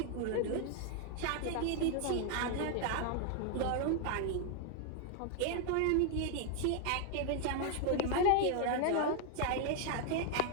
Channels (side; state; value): both; different; correlation 0.00